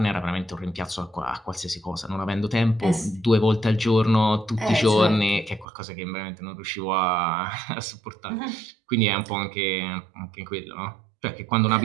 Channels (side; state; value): left; drops out; at 5.7 s